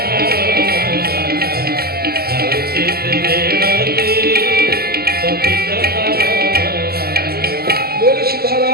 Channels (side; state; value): left; late; 0.45 ms